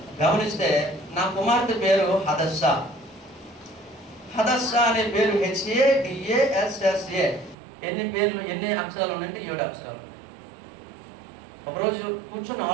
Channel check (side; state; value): left; drops out; at 7.6 s